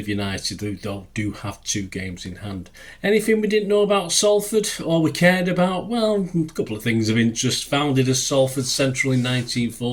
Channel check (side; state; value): both; identical; correlation 1.00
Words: United, who do have 2 games in hand. Anything we didn't know about Salford, or we cared about? Well, a couple of things of interest. Founded as Salford Central in